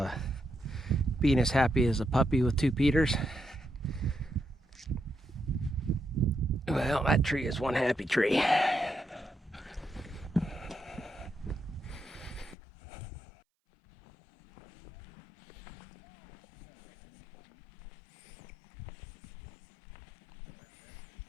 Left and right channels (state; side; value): drops out; right; at 12.6 s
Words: being as happy as a puppy with 2 Peters. Well, that tree is one happy tree.